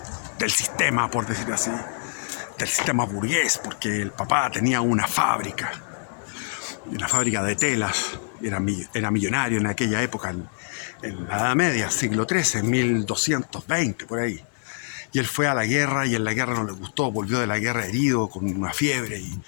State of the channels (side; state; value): right; silent; 62 dB below the other